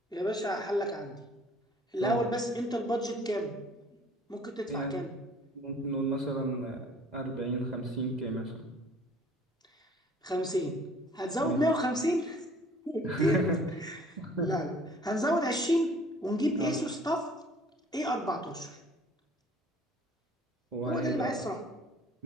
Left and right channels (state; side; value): normal; both; correlation 0.54